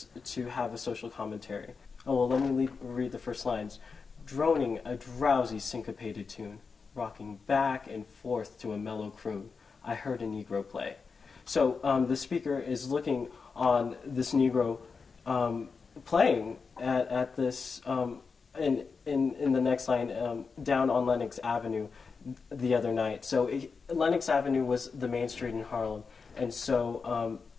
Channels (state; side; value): quieter; right; 5.0 dB